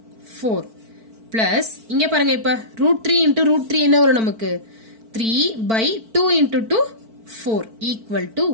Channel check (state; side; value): late; left; 4.5 ms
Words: 4 plus இங்க பாருங்க இப்ப √3 into √3 என்ன வரும் நமக்கு 3/2 into 2 4 equal to